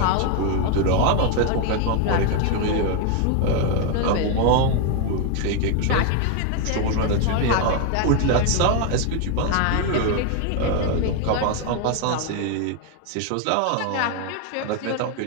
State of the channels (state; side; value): different; both; correlation 0.01